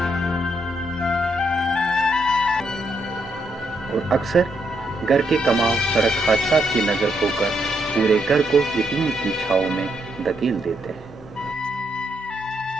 اور اکثر گھر کے کماؤ سڑک حادثات کی نظر ہو کر پورے گھر کو یتیم کی چھاؤں میں دھکیل دیتے ہیں۔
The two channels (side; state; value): both; normal; correlation 0.77